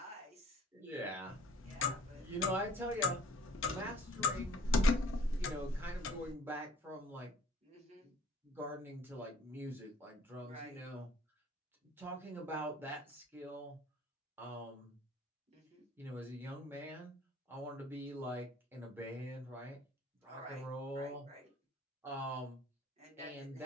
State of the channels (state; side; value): normal; both; correlation 0.54